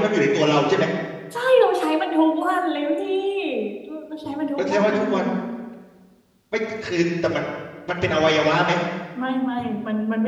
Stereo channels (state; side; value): identical; both; correlation 1.00